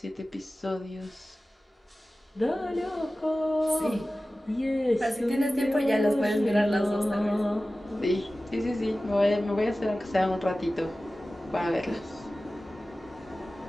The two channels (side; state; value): both; normal; correlation 0.96